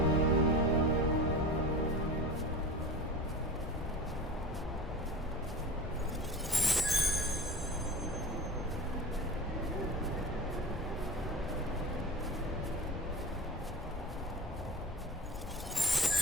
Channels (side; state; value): both; normal; correlation 0.32